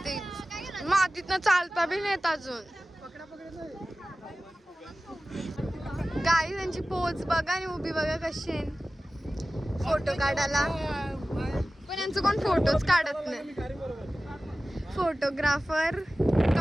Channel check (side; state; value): both; normal; correlation 0.96